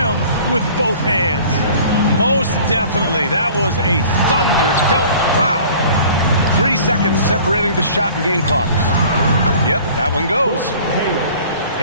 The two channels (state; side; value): inverted; both; correlation -0.48